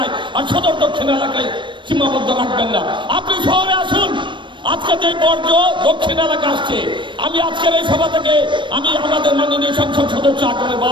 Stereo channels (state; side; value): late; left; 0.23 ms